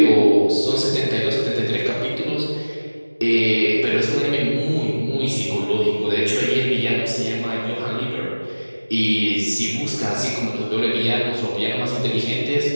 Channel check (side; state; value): both; inverted; correlation -1.00